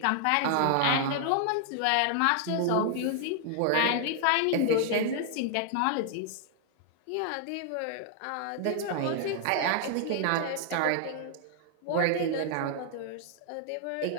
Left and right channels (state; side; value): different; both; correlation 0.00